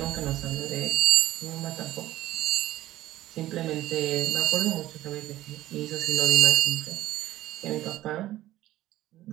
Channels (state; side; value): quieter; left; 15.0 dB